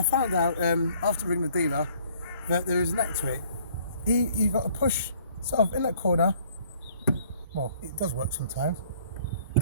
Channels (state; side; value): inverted; both; correlation -0.59